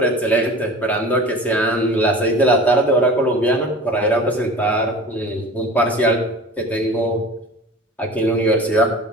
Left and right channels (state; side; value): normal; both; correlation 0.38